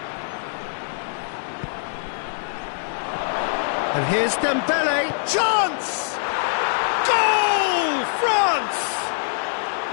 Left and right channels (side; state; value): right; silent; digital silence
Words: And here's Dembele. Chance! Goal! France!